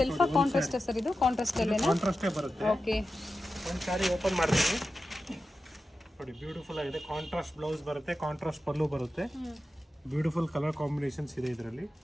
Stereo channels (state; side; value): normal; both; correlation 0.92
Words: ಕಾಂಟ್ರಾಸ್ಟ್ ಸರ್ ಇದು? ಕಾಂಟ್ರಾಸ್ಟ್ ಅಲ್ಲೇನಾ? ಕಾಂಟ್ರಾಸ್ಟೇ ಬರುತ್ತೆ. ಓಕೆ, ಒಂದು ಸಾರಿ ಓಪನ್ ಮಾಡ್ತೀನಿ ನೋಡಿ, ಬ್ಯೂಟಿಫುಲ್ ಆಗಿದೆ. ಕಾಂಟ್ರಾಸ್ಟ್ ಬ್ಲೌಸ್ ಬರುತ್ತೆ, ಕಾಂಟ್ರಾಸ್ಟ್ ಪಲ್ಲು ಬರುತ್ತೆ. ಬ್ಯೂಟಿಫುಲ್ ಕಲರ್ ಕಾಂಬಿನೇಷನ್ಸ್ ಇದೆ ಇದರಲ್ಲಿ.